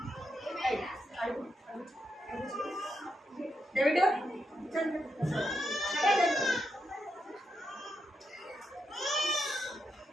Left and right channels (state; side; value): normal; both; correlation 0.83